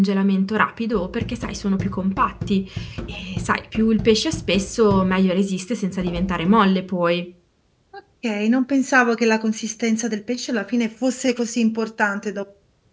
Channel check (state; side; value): identical; both; correlation 1.00